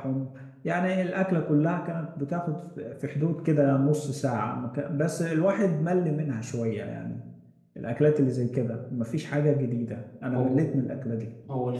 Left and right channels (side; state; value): both; identical; correlation 1.00